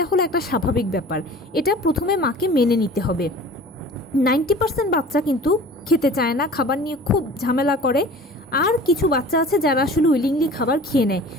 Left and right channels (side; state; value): both; normal; correlation 0.43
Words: হলো একটা স্বাভাবিক ব্যাপার। এটা প্রথমে মাকে মেনে নিতে হবে। 90% বাচ্চা কিন্তু খেতে চায় না, খাবার নিয়ে খুব ঝামেলা করে। আর কিছু বাচ্চা আছে যারা আসলে উইলিংলি খাবার খেয়ে নেয়।